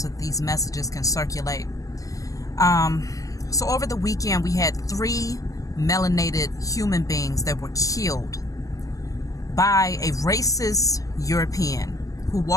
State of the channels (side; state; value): right; late; 0.16 ms